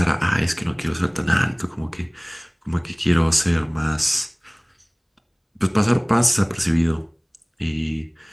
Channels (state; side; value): identical; both; correlation 1.00